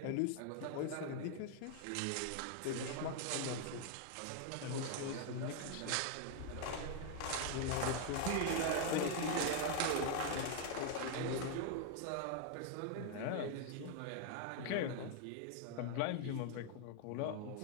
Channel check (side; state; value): both; different; correlation 0.00